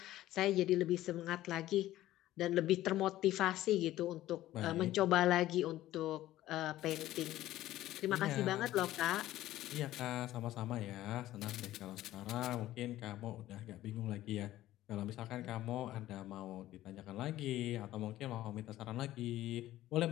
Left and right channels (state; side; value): quieter; right; 14.7 dB